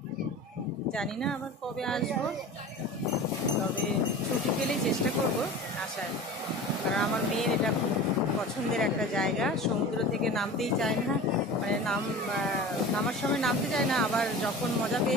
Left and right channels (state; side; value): normal; both; correlation 0.35